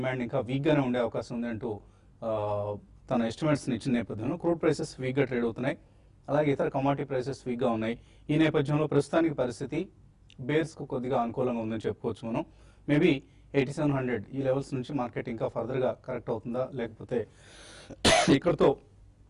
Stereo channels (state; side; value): identical; both; correlation 1.00